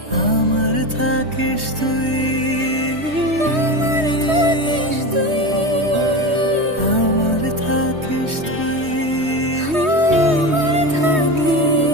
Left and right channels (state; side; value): late; left; 3.2 ms